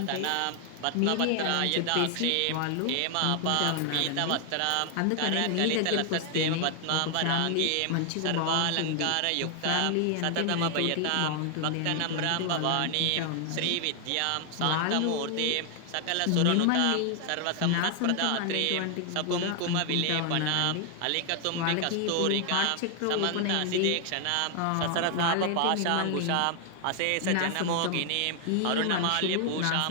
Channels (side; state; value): both; different; correlation 0.00